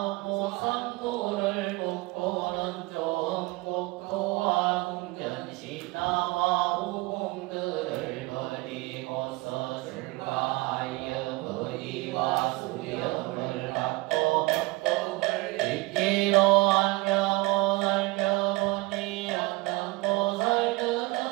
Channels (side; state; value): left; quieter; 22.9 dB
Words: 무상도를 묻고는 좋은 국토와 궁전신하와